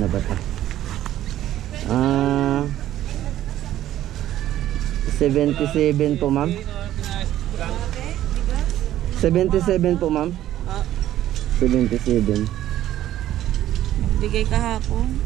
ba ito? 77 po ma'am. 77 po ma'am. 77. Bigay kahapon.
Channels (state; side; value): quieter; left; 12.9 dB